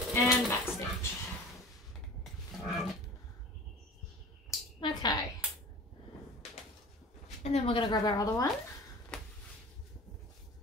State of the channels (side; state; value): both; normal; correlation 0.40